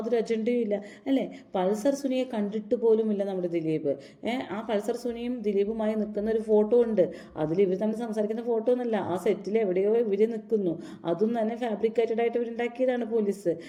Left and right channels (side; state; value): both; identical; correlation 1.00